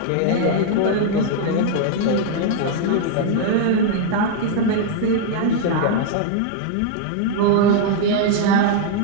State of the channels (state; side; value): different; both; correlation -0.01